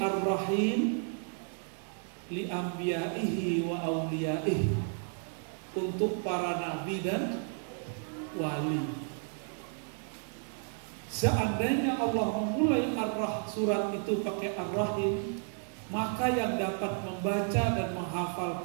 li anbiya'ihi wa awliyaihi, untuk para nabi dan wali. Seandainya Allah memulai surat itu pakai Ar-Rahim, maka yang dapat membaca dan menghafal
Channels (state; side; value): silent; left; 56 dB below the other